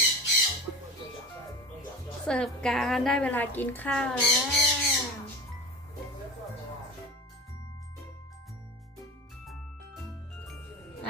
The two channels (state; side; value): normal; both; correlation 0.30